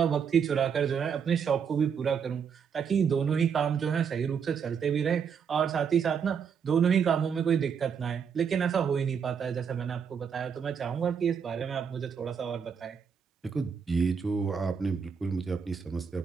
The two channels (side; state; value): left; quieter; 6.9 dB